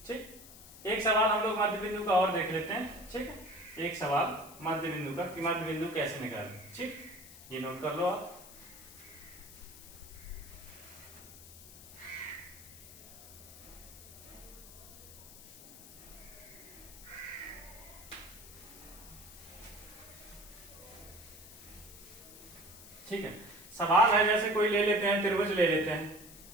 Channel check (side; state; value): left; noise; hiss, 17 dB below the sound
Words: ठीक, एक सवाल हम लोग मध्य बिंदु का और देख लेते हैं। ठीक है, एक सवाल मध्य बिंदु का कि मध्य बिंदु कैसे निकालें। ठीक, ये नोट कर लो आप। ठीक है, सवाल है जैसे कोई ले लेते हैं त्रिभुज ले लेते हैं।